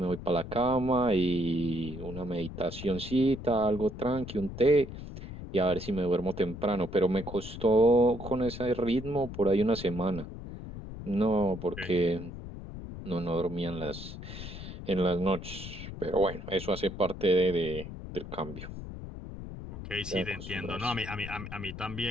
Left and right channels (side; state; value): left; noise; rumble, 10 dB below the sound